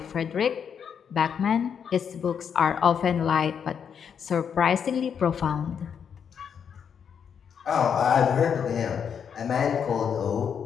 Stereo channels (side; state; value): right; quieter; 7.5 dB